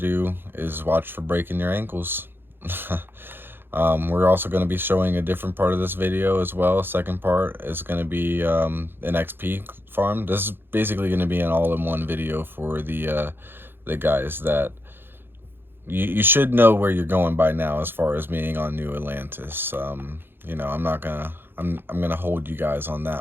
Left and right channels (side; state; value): left; late; 0.10 ms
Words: is watch for breaking your ankles. We're also going to be showing a different part of this video as well. Second part is going to be an XP farm. This is basically going to be an all-in-one video for the guys that you should know where you're going by now as far as being on New Atlantis. I'm not gonna I'm gonna hold you guys on